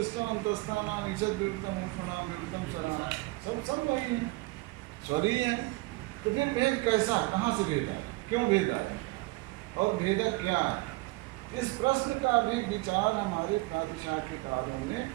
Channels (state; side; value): quieter; left; 22.2 dB